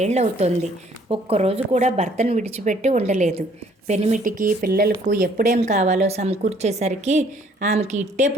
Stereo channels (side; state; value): both; normal; correlation 0.61